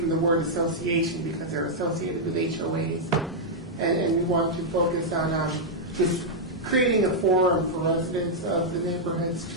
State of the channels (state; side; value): normal; both; correlation -0.05